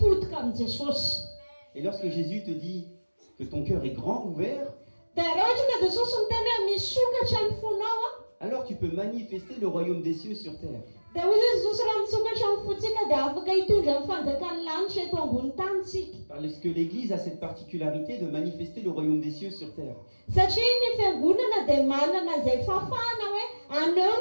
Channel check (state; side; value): inverted; both; correlation -1.00